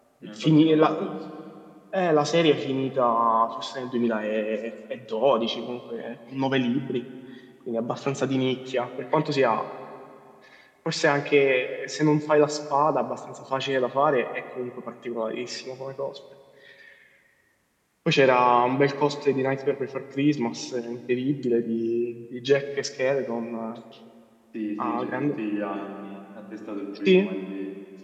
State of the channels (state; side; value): identical; both; correlation 1.00